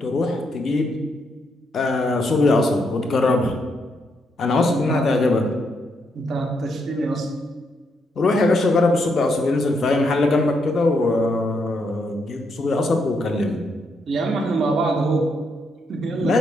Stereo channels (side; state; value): both; normal; correlation 0.78